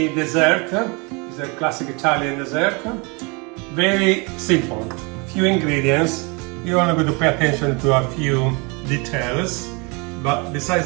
dessert. It's a classic Italian dessert. Very simple, few ingredients. You only going to pay attention to a few details, but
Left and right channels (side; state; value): left; quieter; 30.0 dB